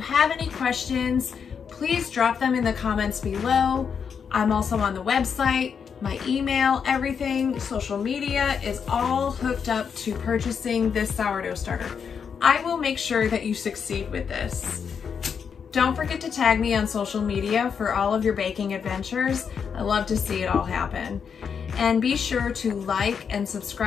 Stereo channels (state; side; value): quieter; right; 6.7 dB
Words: any questions, please drop them in the comments below. I'm also on the website, my email, everything, social media is all hooked up to purchasing this sourdough starter. I will make sure that you succeed with this. Don't forget to tag me on social media for all of your baking adventures. I love to see it all happen. And be sure to like and